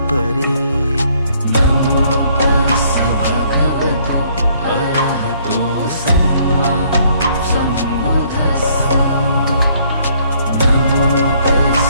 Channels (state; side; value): inverted; both; correlation -0.64